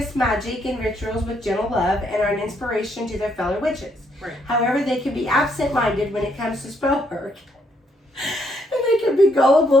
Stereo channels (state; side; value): normal; both; correlation 0.72